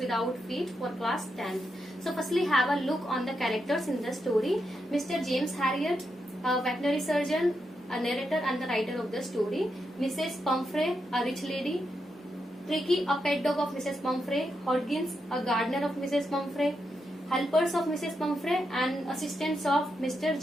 Feet for class 10th. So firstly have a look on the characters in the story. Mr. James Harriet, a veterinary surgeon, a narrator and the writer of the story. Mrs. Pumphrey, a rich lady. Tricky, a pet dog of Mrs. Pumphrey. Hodgins, a gardener of Mrs. Pumphrey. Helpers of Mrs. Pumphrey and assistants of Mr.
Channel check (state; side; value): normal; both; correlation 0.84